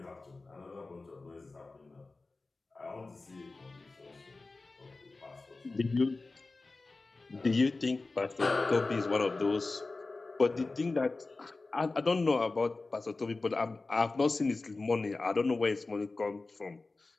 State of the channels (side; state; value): right; quieter; 3.5 dB